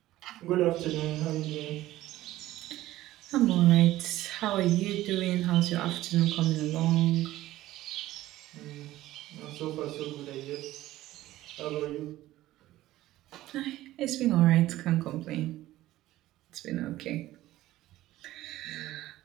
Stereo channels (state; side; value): quieter; left; 15.6 dB